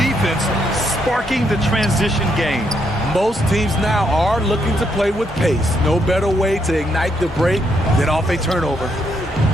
sparking the transition game. Most teams now are looking to play with pace. No better way to ignite the break than off a turnover.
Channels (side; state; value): both; normal; correlation 0.76